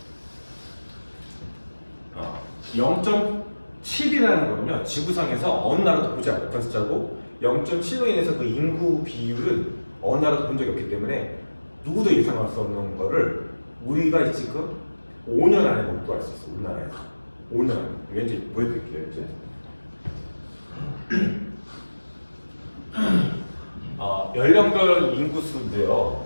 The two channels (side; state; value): both; inverted; correlation -1.00